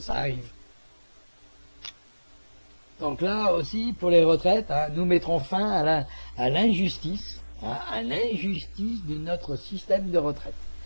arrive. Donc là aussi, pour les retraites, hein, nous mettrons fin à l'injustice, hein, à l'injustice de notre système de retraite.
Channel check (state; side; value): inverted; both; correlation -1.00